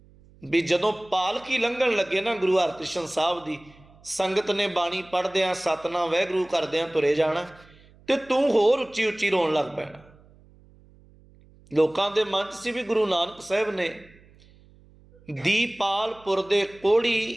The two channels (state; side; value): noise; right; hum, 27 dB below the sound